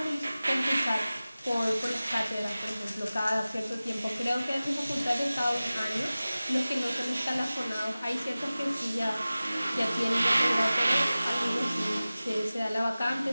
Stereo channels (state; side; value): inverted; both; correlation -0.97